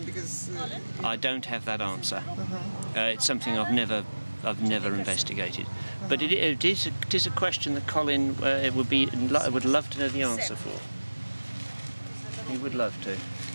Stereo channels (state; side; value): inverted; both; correlation -1.00